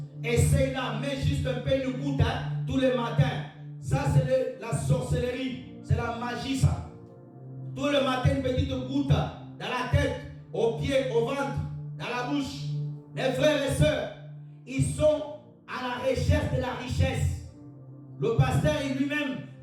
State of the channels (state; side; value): identical; both; correlation 1.00